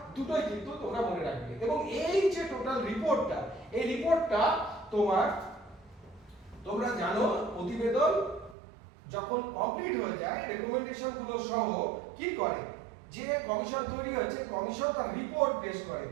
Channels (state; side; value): drops out; left; at 8.6 s